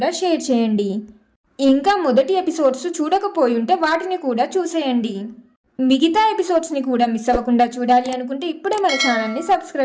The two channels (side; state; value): both; identical; correlation 1.00